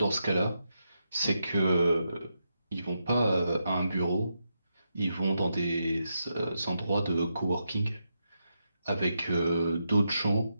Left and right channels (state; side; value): inverted; both; correlation -0.84